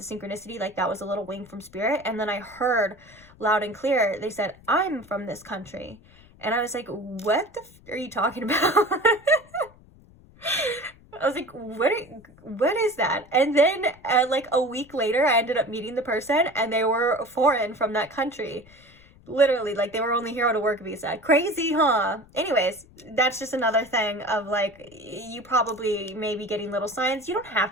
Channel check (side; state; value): left; noise; rumble, 25 dB below the sound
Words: synchronicity. Like that was a little wink from spirit. And then I heard loud and clear, they said, I'm from this country. And I was like, what the are you talking about? I was like, what is that? And then like a week later, I ended up meeting the person, and they were foreign from that country. Literally, like they were only here on a work visa. Crazy, huh? Anyways, that's just another thing of like, you probably may be getting little signs. You don't have